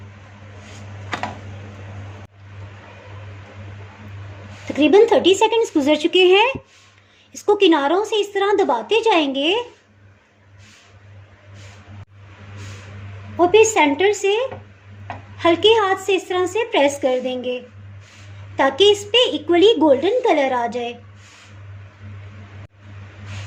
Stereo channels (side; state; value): both; identical; correlation 1.00